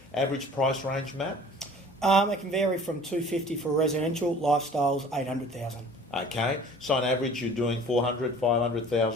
Average price range, Matt? It can vary from $250 for residential, lifestyles, $800,000. Okay, so on average you're doing $400,000,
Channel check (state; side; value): normal; both; correlation 0.48